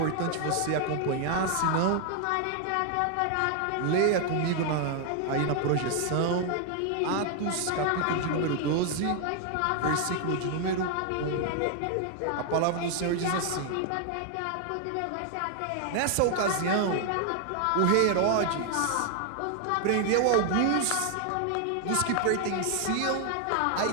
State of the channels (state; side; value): different; both; correlation 0.00